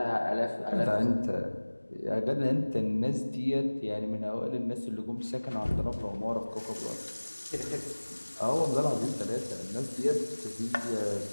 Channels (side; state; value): both; inverted; correlation -1.00